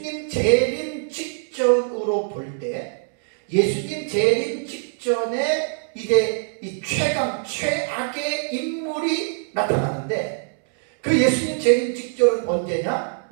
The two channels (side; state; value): left; silent; 63 dB below the other